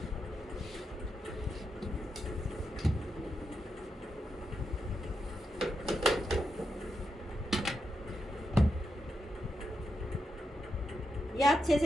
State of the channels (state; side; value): normal; both; correlation 0.85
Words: ये अच्छे से